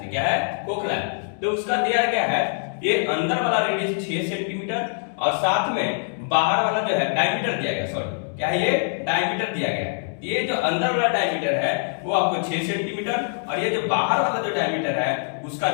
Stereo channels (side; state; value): right; silent; digital silence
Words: से क्या है, खोखला है। तो उसका दिया गया है ये अंदर वाला रेडियस 6 सेंटीमीटर और साथ में बाहर वाला जो है डायमीटर दिया गया, सॉरी क्या है, ये डायमीटर दिया गया है। ये जो अंदर वाला डायमीटर है वो आपको 6 सेंटीमीटर और ये जो बाहर वाला जो डायमीटर है उसका